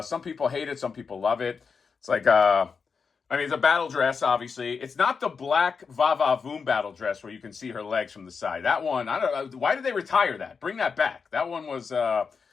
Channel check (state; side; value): quieter; right; 5.5 dB